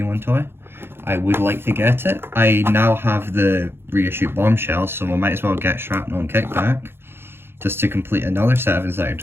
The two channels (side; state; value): left; late; 0.11 ms